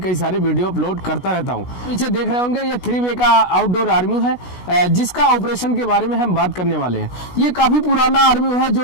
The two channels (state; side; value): late; right; 16 ms